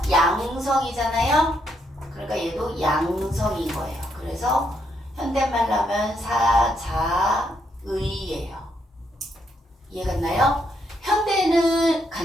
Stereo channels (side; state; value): both; normal; correlation 0.76